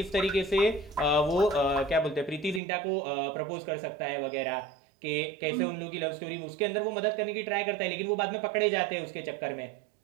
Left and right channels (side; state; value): left; drops out; at 2.6 s